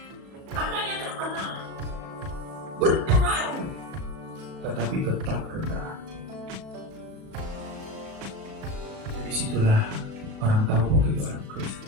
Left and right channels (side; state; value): left; late; 36 ms